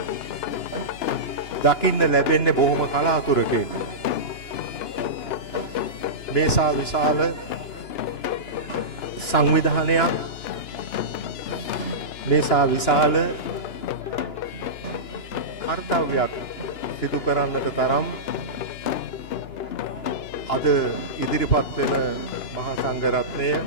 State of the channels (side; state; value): right; late; 2.9 ms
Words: දකින්න ලැබෙන්නේ බොහොම කලාතුරකින්. මේසා විශාල සංවිධානයක්, මේසා විශාල කර්තව්‍යයක් සිදු කරන්නට තරම් අද ඉදිරිපත් වෙන මහා සංඝරත්නය